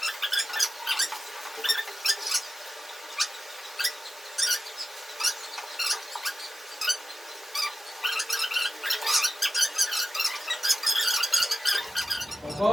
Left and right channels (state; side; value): normal; both; correlation 0.93